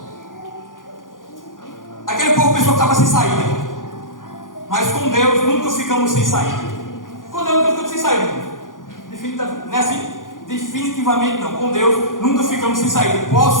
aquele povo pensou que estava sem saída, mas com Deus nunca ficamos sem saída. Com Deus nunca ficamos sem saída. Não é assim? Definitivamente não. Com Deus nunca ficamos sem saída.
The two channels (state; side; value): late; right; 0.89 ms